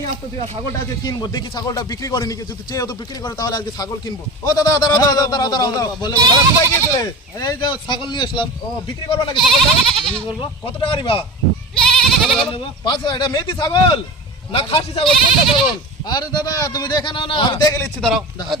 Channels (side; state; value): both; normal; correlation 0.31